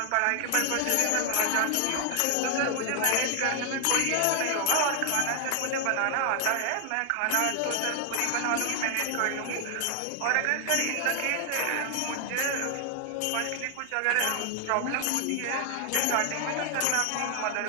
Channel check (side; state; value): both; different; correlation 0.00